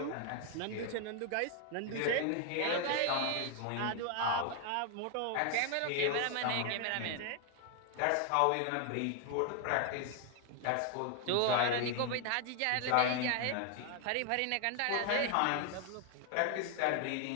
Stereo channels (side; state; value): both; different; correlation 0.00